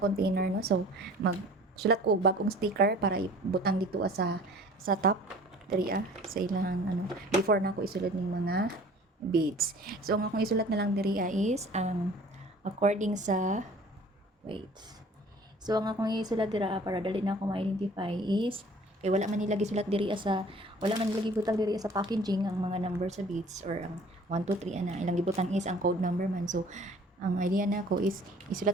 container no. So sulat ko bagong sticker para ibutang dito sa top diri sa ilang ano before na ako isulod ning mga beads. So ang akong isulat na lang diri is ang according sa wait. So ang akong isulat dira para dali na ako ma-identify is kay wala man nilagi sulat diri wala man nilagi butang diri sa packaging ang mga number sa beads or ang 1 2 3 ana ilang gibutang is ang code number man. So ang idea na ko is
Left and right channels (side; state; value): both; normal; correlation 0.49